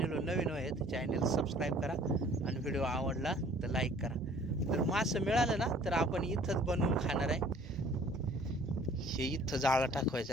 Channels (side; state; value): both; normal; correlation 0.53